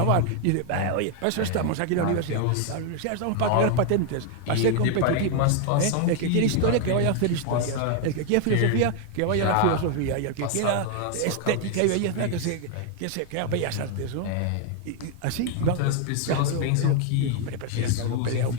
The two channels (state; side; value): different; both; correlation 0.00